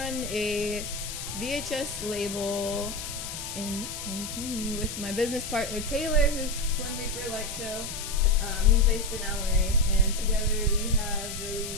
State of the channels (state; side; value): noise; left; hiss, 7 dB below the sound